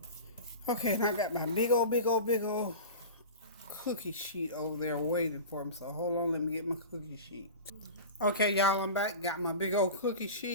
Okay, and I got my big old cookie sheet over there waiting for me. So hold on, let me get my cookie sheet. Okay, y'all, I'm back. Got my big old cookie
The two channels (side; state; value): both; inverted; correlation -0.32